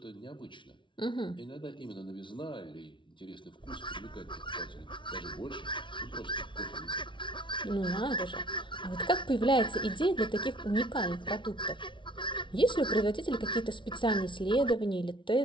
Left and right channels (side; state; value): right; late; 0.24 ms